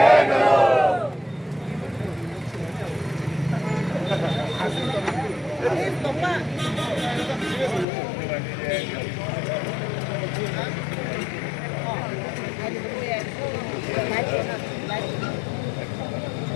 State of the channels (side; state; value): right; drops out; at 7.9 s